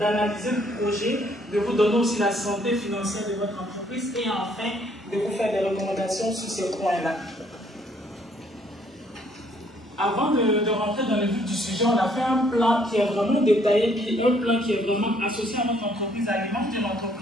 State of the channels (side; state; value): both; normal; correlation 0.65